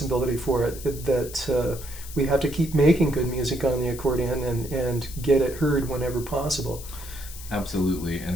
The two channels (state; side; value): noise; left; hiss, 14 dB below the sound